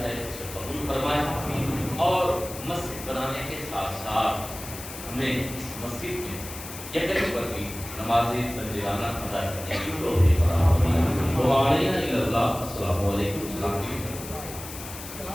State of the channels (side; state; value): left; noise; hiss, 12 dB below the sound